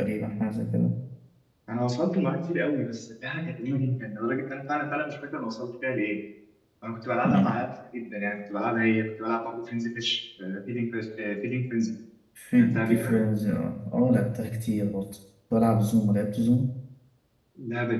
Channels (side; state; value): both; identical; correlation 1.00